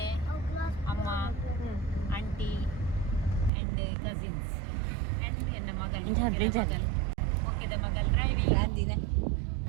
ಅಮ್ಮ ಆಂಟಿ ಅಂಡ್ ಕಸಿನ್ಸ್ ಅಂಡ್ ಎನ್ನ ಮಗಲ್ ಮೊಕ್ಕೆದ ಮಗಲ್ ಡ್ರೈವಿಂಗ್ ಅಂದಿನ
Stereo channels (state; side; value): drops out; left; at 3.5 s